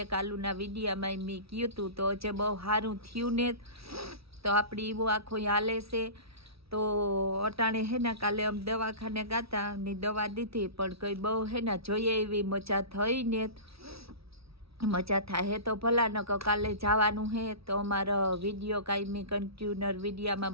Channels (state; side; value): late; left; 0.76 ms